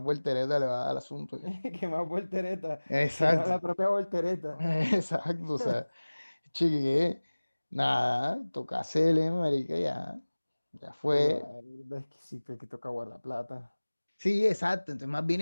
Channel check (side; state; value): both; inverted; correlation -1.00